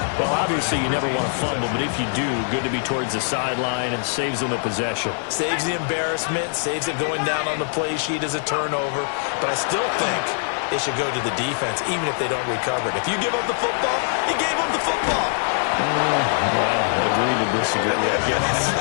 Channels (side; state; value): right; silent; 56 dB below the other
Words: Well, obviously, you never want to fumble, but if you do, good to be towards the sideline and saves them the possession. Saves the embarrassment, saves it going down on the play sheet as a turnover. But I still think it should go to the defense, even if they don't recover it. If you give up the football, you gave up the football. Well, agree to disagree, I guess.